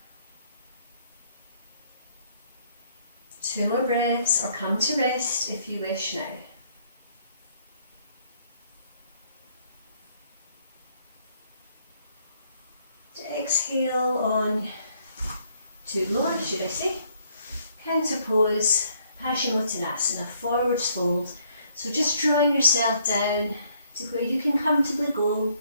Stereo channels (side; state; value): both; inverted; correlation -0.67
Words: Two more breaths, or come to rest if you wish now. Exhale on to lower, should I say. Counter pose, Paschimottanasana, forwards fold. So just drawing yourself down to where you can comfortably go.